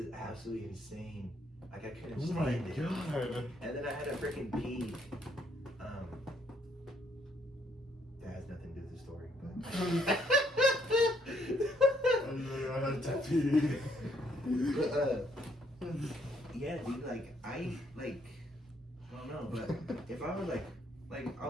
absolutely insane. Like I couldn't stand it. God. And then I had to freaking pee. That has nothing to do with the story, but I had to pee. But yeah, dude, like I don't know, but if I was like I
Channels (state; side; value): normal; both; correlation 0.69